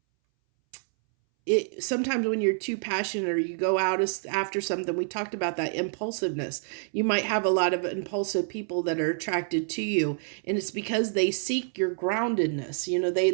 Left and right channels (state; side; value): silent; left; 60 dB below the other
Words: sometimes when you're too passionate or you go out after something, we talked about that impulsiveness. You might have a lot of impulsive people that are attracted to you, and it's because they seek your